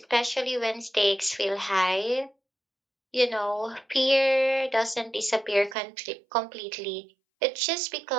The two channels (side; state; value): left; drops out; at 5.8 s